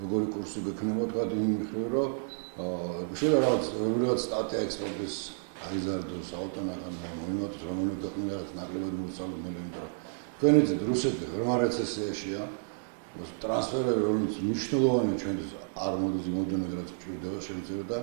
როგორი კურსი გექნება თქვა იმ მხრივ რომ შეიძლება რაღაც სტატია ექსპორტის აიზარდოს აუტონაკანდა მოიმატოს რომელიც ქვეყნიდან რაც ნაკლებად მოსალოდნელი იმიტომ რომ თქვენ იცით რუსეთი ღრმა რეცესიაშია ტრანსფერები რომელიც მნიშვნელოვანია ჩვენთვის არ მოდის იმოდენად რაც გვჭირდება შემიძლია და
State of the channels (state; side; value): silent; left; digital silence